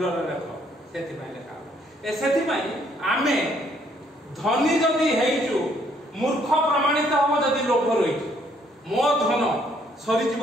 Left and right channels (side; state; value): both; normal; correlation 0.67